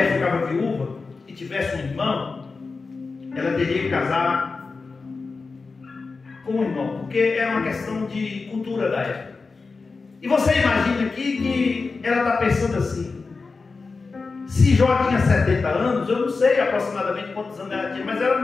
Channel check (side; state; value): right; quieter; 4.3 dB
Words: ficava viúva e tivesse um irmão, ela teria que casar com um irmão, porque era uma questão de cultura da época. E você imagina aqui que ela está pensando assim, se Jó tinha 70 anos, eu não sei aproximadamente quantos anos ela tinha, mas ela